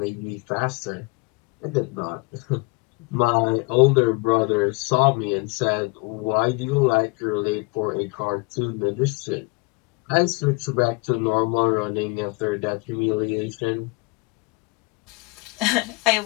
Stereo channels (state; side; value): quieter; right; 28.6 dB